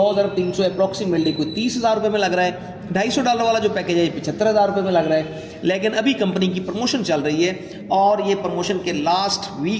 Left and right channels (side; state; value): both; identical; correlation 1.00